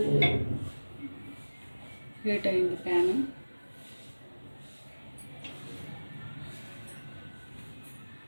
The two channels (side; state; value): both; inverted; correlation -1.00